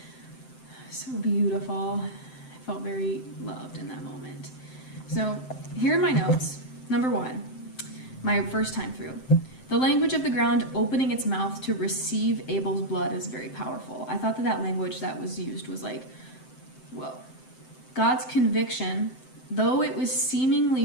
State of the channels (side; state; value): right; late; 7.7 ms